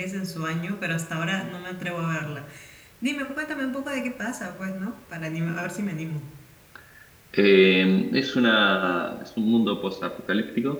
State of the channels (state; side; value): identical; both; correlation 1.00